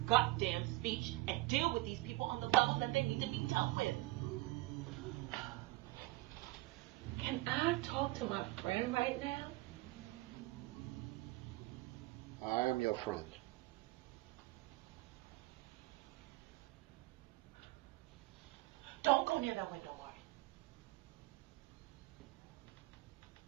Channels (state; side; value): quieter; left; 20.2 dB